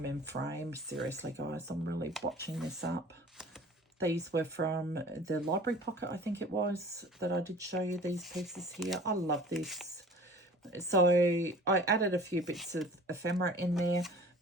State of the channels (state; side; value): normal; both; correlation 0.45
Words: in frame. Seriously, guys, I'm really watching this up. These were from the library pocket, I think it was, that I did show you these pieces here. I love this. So I added a few bits of ephemera in there,